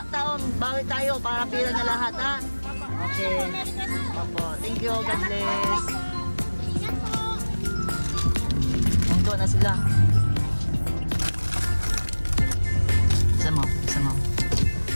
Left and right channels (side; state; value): both; inverted; correlation -1.00